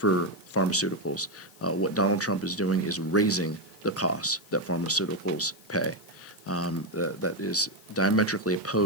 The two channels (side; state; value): left; noise; hiss, 25 dB below the sound